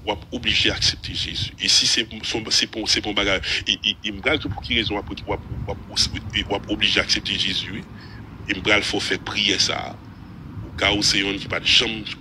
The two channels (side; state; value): both; identical; correlation 1.00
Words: on est obligé d'accepter Jésus. Et si c'est bon bagage, il me dit pour qui raison, on est obligé d'accepter Jésus. Il me faut faire prier ça. Au cas où c'est un qui pas de chambre,